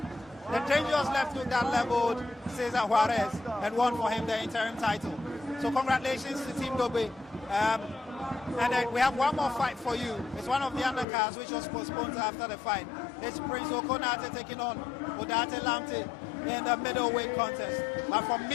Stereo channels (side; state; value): right; drops out; at 11.1 s